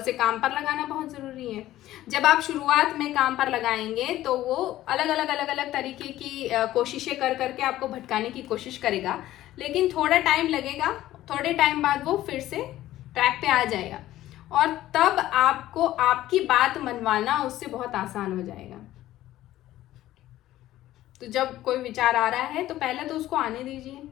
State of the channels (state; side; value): quieter; right; 14.5 dB